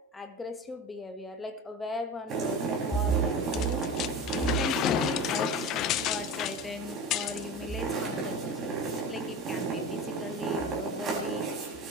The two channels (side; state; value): both; normal; correlation 0.30